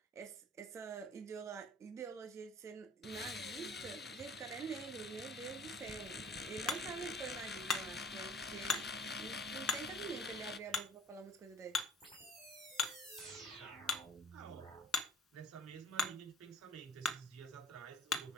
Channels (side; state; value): both; normal; correlation 0.49